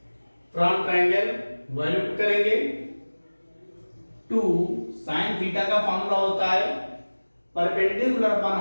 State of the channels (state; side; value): inverted; both; correlation -1.00